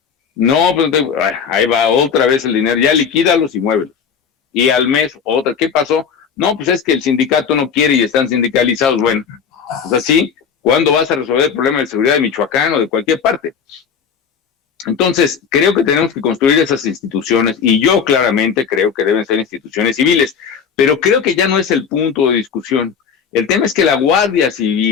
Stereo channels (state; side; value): quieter; right; 6.7 dB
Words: no, pues ahí va otra vez el dinero, ya liquídalos y muévelos. Y al mes, otra, ¿qué pasó? No, pues es que el sindicato no quiere y están sindicalizados. Bueno, pues así, ¿cuándo vas a resolver el problema de seguridad de Michoacán o de cualquier parte? Entonces, creo que tenemos que construir esas instituciones, y yo claramente creo que deben ser instituciones civiles, pero creo que ya no es el punto de discusión. El tema es que la Guardia